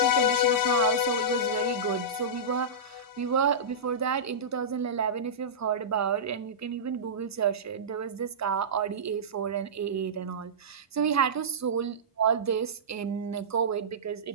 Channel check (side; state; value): both; normal; correlation -0.17